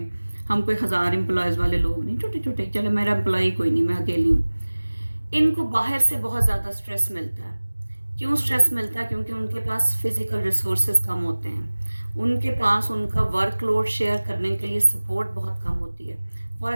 ہم کوئی 1000 امپلائیز والے لوگ نہیں, چھوٹے چھوٹے, چلے میرا امپلائی کوئی نہیں, میں اکیلی ہوں. ان کو باہر سے بہت زیادہ سٹریس ملتا ہے. کیوں سٹریس ملتا ہے؟ کیونکہ ان کے پاس فزیکل ریسورسز کم ہوتے ہیں, ان کے پاس ان کا ورک لوڈ شیئر کرنے کے لیے سپورٹ بہت کم ہوتی ہے. فار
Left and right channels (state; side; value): inverted; both; correlation -1.00